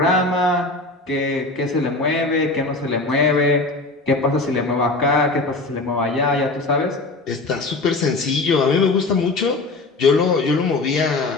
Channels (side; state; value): right; quieter; 3.2 dB